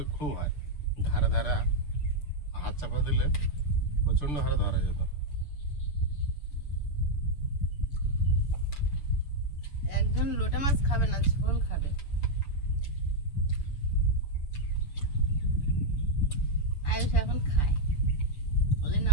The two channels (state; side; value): late; right; 7.0 ms